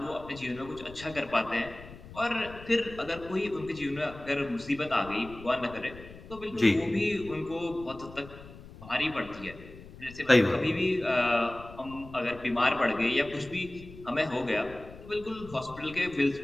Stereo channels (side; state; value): left; noise; rumble, 17 dB below the sound